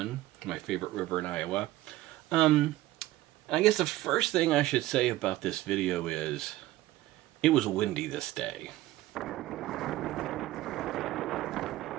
My favorite river in Iowa. And I guess the first thing I should say about this video is it was windy this day.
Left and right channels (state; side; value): quieter; left; 16.2 dB